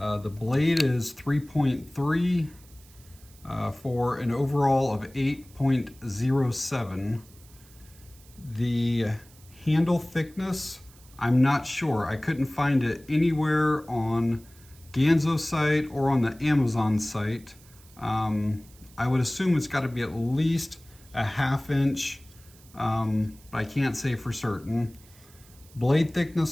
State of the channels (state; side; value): noise; right; hiss, 25 dB below the sound